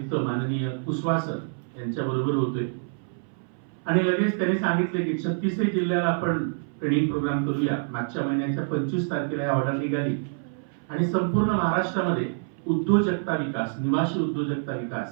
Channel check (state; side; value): silent; left; 59 dB below the other